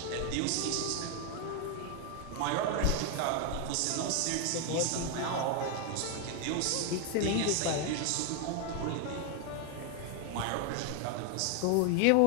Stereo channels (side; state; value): both; different; correlation 0.01